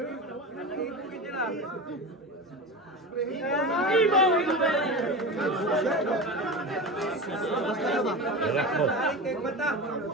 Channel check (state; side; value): normal; both; correlation 0.27